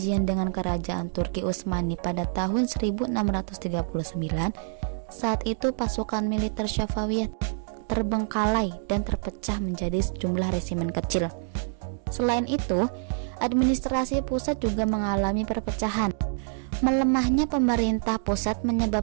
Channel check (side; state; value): left; silent; digital silence